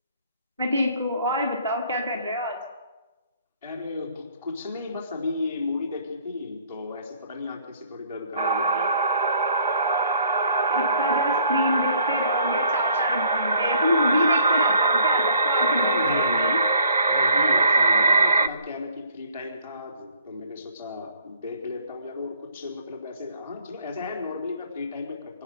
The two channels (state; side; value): inverted; both; correlation -0.60